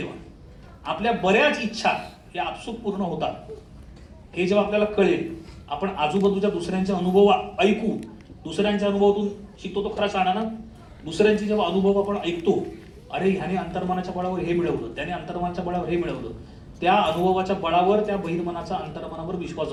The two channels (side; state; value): both; identical; correlation 1.00